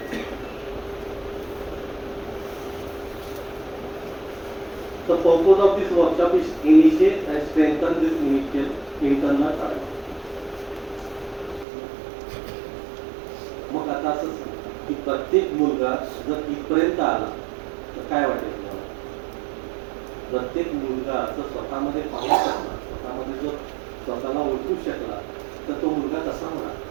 The purpose of this workshop is initiate and strengthen this initial internal dialogue. मग आता असं की प्रत्येक मुलगा जर इथपर्यंत आला तर काय वाटेल तुम्हाला? प्रत्येक मुलगा जर स्वतःमध्ये पाहू शकला, स्वतःमध्ये जर स्वतःला ओळखू शकला तर तो मुलगा कसा होणार?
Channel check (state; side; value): drops out; left; at 11.7 s